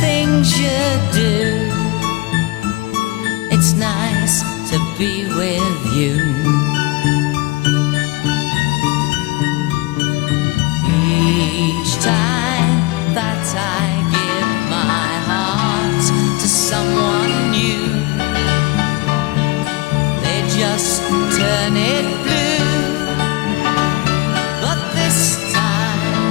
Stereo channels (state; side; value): quieter; right; 21.8 dB